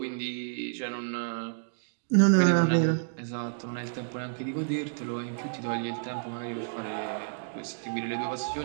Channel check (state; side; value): silent; left; digital silence